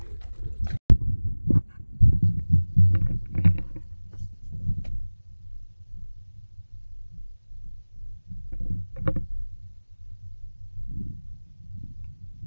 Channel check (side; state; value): both; inverted; correlation -1.00